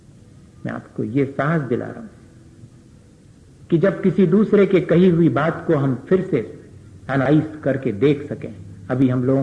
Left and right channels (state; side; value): identical; both; correlation 1.00